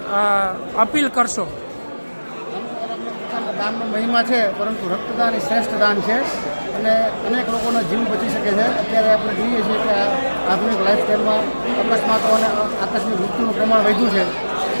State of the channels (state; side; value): inverted; both; correlation -1.00